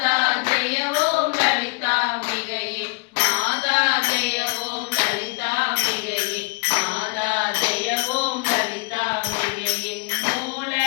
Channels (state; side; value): quieter; right; 31.6 dB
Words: ஜெய ஓம் லலிதாம்பிகையே மாதா ஜெய ஓம் லலிதாம்பிகையே மாதா ஜெய ஓம் லலிதாம்பிகையே மூல